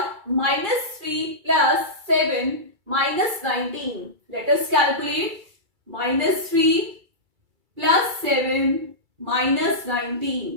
-3 plus 7 minus 19. Let us calculate. -3 plus 7 minus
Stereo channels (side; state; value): left; late; 2.3 ms